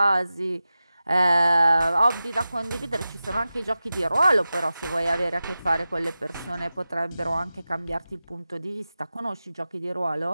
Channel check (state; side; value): inverted; both; correlation -0.94